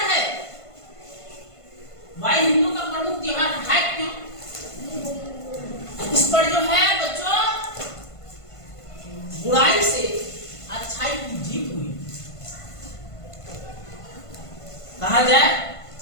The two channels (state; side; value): late; right; 1.5 ms